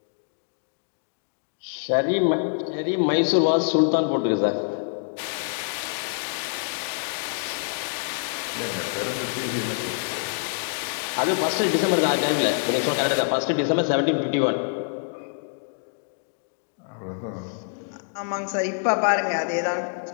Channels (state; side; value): silent; right; digital silence